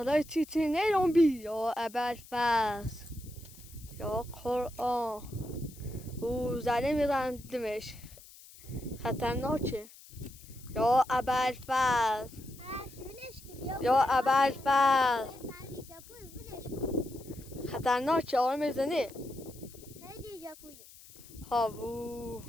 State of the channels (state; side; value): noise; left; hiss, 20 dB below the sound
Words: چیچی نیرون بی یا ابوالفضل یا قرآن او زنه میرندمش خطرناکه یا ابوالفضل یا ابوالفضل خطرناکه آره میزنه خیلی جپویه هاوو